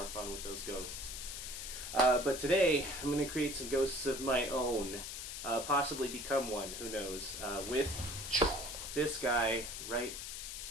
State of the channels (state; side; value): noise; left; hiss, 7 dB below the sound